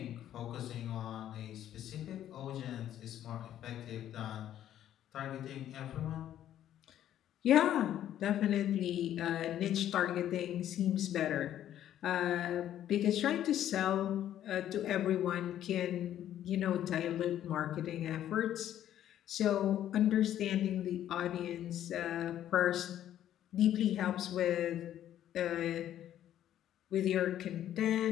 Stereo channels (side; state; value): right; quieter; 11.5 dB